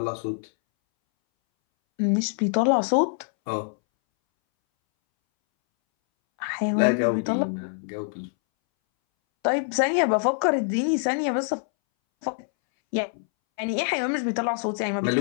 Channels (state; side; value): silent; right; 62 dB below the other